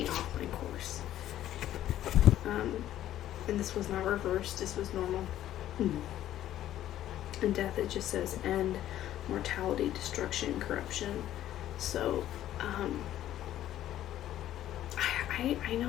off my course. And this was not reversed, this was normal. And Death, it just says end, mortality, destruction, corruption. So I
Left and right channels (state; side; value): quieter; right; 12.5 dB